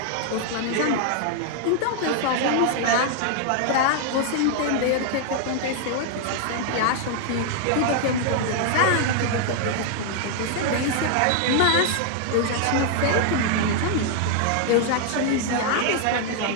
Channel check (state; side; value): different; both; correlation 0.00